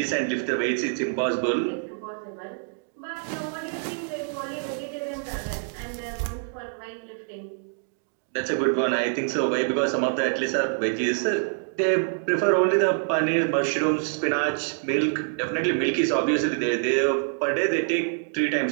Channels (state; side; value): silent; left; digital silence